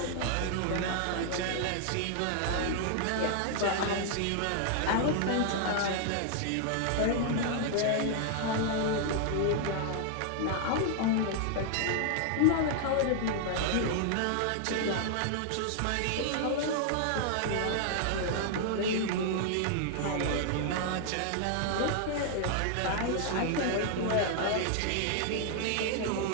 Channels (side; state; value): both; different; correlation 0.00